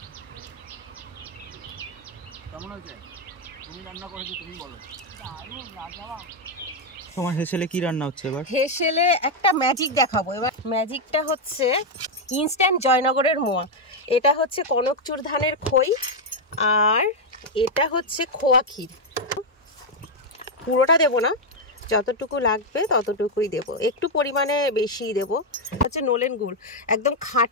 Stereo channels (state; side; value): normal; both; correlation 0.02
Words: কেমন আছে? তুমি রান্না করেছো, তুমি বলো। তোমার হেসেলে কি রান্না হচ্ছে এবার? হেসেলে একটা ম্যাজিক দেখাবো এবার। ম্যাজিকটা হচ্ছে ইনস্ট্যান্ট জয়নগরের মোয়া। এটা হচ্ছে কনকচুর ধানের খই, আর এটা হচ্ছে খোয়া ক্ষীর। পুরোটা দেবো না, যতটুকু লাগবে ততটুকুই দেব, একটু পরিমাণে বেশিই দেব। হচ্ছে নলেন গুড়, একদম